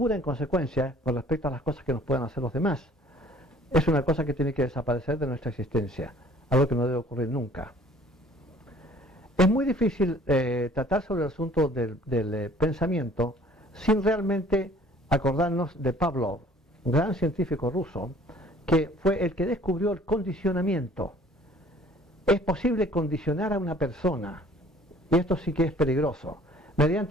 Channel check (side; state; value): both; normal; correlation 0.54